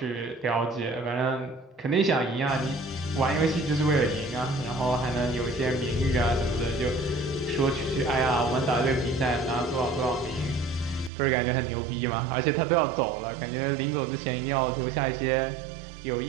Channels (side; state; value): left; drops out; at 11.1 s